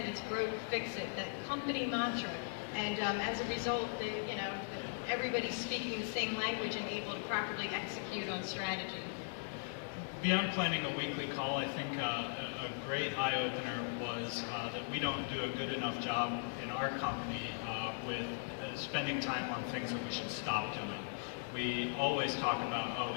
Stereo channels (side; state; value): right; silent; digital silence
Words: it's broke, fix it, that company mantra. And as a result, everybody's speaking the same language and able to properly execute on strategy. Beyond planning a weekly call, I think a great eye-opener was that we don't do a good enough job in our company with spending time on things that we should stop doing. We always talk about, oh,